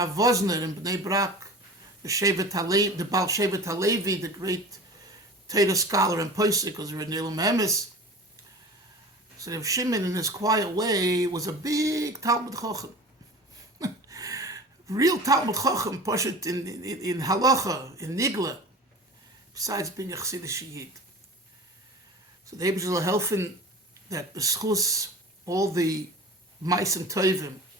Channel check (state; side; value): normal; both; correlation 0.37